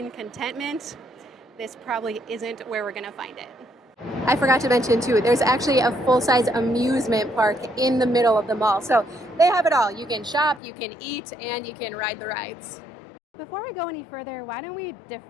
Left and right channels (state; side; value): drops out; right; at 10.6 s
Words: contentment, this probably isn't where we're going to find it. I forgot to mention too, there's actually a full-size amusement park in the middle of the mall. So they have it all. You can shop, you can eat, and you can ride the rides. Before we go any further, why don't we